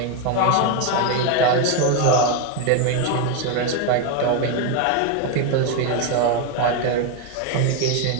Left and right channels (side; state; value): both; different; correlation 0.02